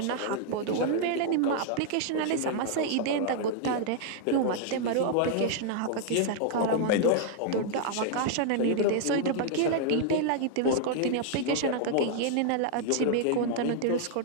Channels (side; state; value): both; different; correlation 0.00